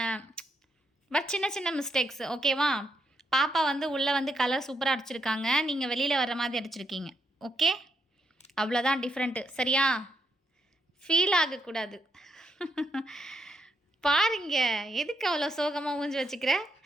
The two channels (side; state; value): both; normal; correlation 0.79